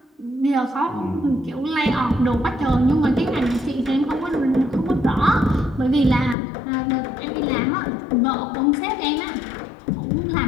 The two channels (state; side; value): drops out; right; at 6.4 s